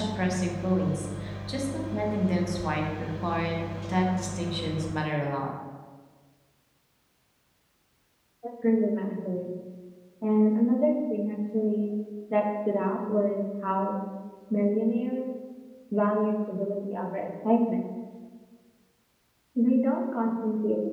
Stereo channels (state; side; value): identical; both; correlation 1.00